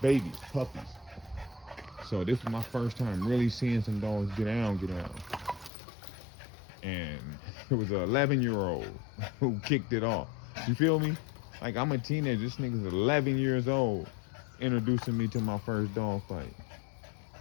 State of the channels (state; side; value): drops out; right; at 5.7 s